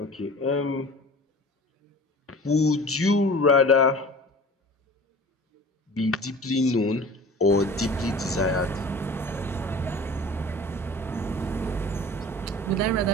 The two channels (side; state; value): both; normal; correlation 0.41